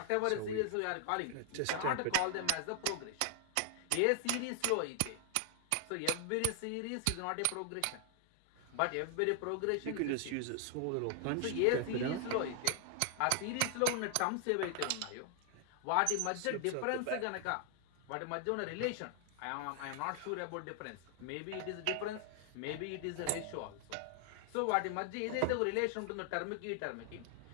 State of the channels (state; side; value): different; both; correlation 0.00